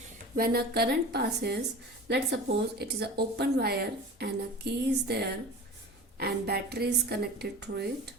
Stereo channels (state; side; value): normal; both; correlation 0.36